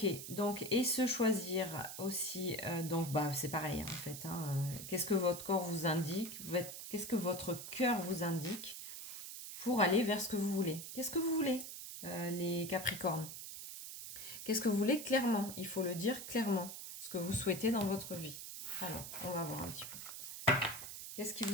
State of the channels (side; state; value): right; noise; hiss, 9 dB below the sound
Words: donc, et se choisir aussi, donc bah c'est pareil en fait, hein, qu'est-ce que votre corps vous indique, qu'est-ce que votre cœur vous indique pour aller vers ce que vous voulez. Qu'est-ce que vous voulez, les Capricornes? Qu'est-ce que vous voulez clairement? Il faut le dire clairement, ce que vous souhaitez dans votre vie. Alors, on va voir un petit peu. Qu'est-ce qui